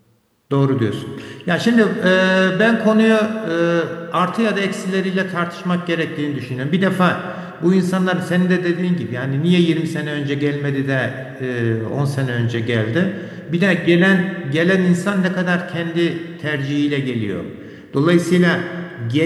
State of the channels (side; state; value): both; identical; correlation 1.00